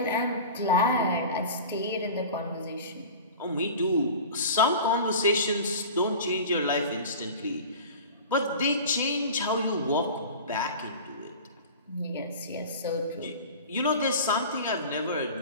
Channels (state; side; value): inverted; both; correlation -0.36